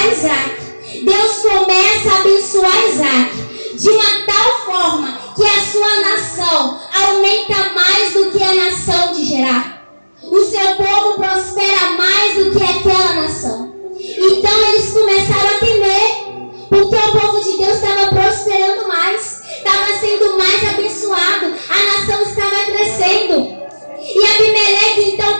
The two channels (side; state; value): both; inverted; correlation -1.00